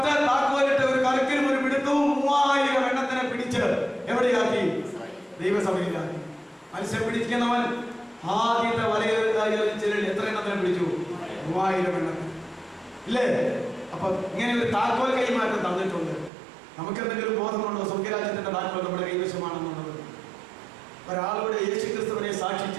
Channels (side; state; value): left; drops out; at 16.3 s